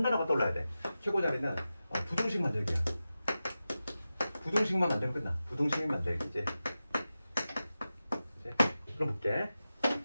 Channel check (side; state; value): both; inverted; correlation -0.93